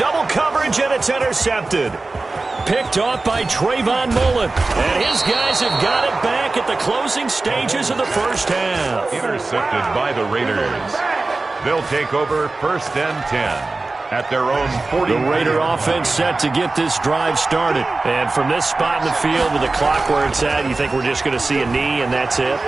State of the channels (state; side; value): quieter; left; 3.4 dB